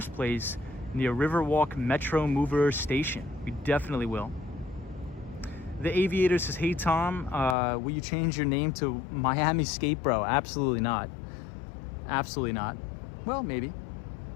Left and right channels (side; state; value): right; drops out; at 7.6 s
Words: Place near Riverwalk Metro Mover Station. We definitely will. The Aviator says, hey Tom, will you change your name to Miami Skate Bro? Absolutely not. Absolutely not. Well, maybe.